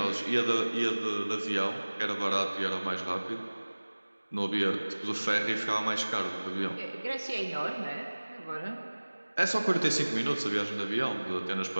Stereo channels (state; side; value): inverted; both; correlation -1.00